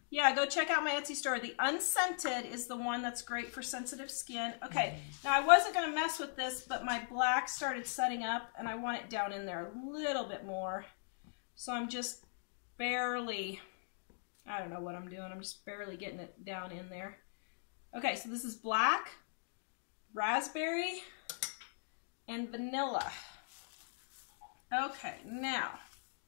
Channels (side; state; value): right; silent; digital silence